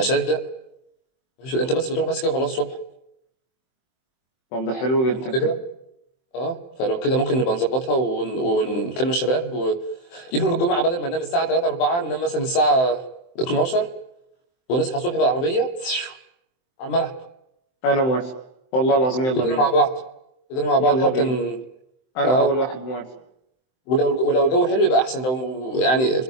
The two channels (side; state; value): right; late; 23 ms